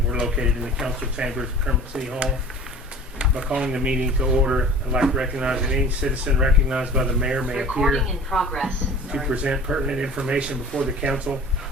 we're located in the council chambers of Kermit City Hall. By calling the meeting to order, I'd like to recognize that any citizen recognized by the mayor may appear in progress. to present pertinent information before the council.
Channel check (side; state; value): both; normal; correlation 0.43